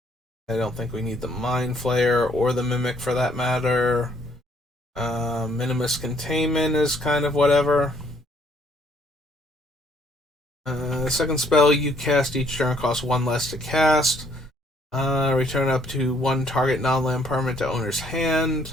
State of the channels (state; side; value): normal; both; correlation 0.66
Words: I don't think we need the Mind Flayer or the Mimic for that matter. Minimus Containment is kind of whatever. The second spell you cast each turn costs 1 less to cast. Return up to 1 target non-land permanent to owner's